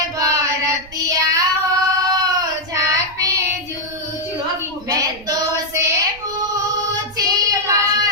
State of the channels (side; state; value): right; noise; rumble, 22 dB below the sound